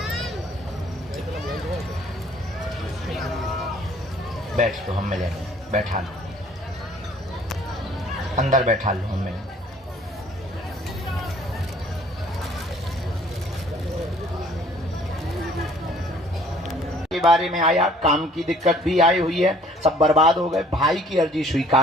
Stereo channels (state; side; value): normal; both; correlation 0.57